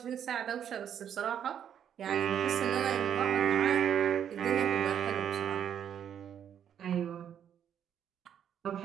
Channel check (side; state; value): left; quieter; 9.1 dB